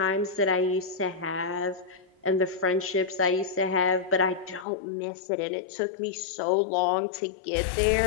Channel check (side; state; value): right; drops out; at 4.7 s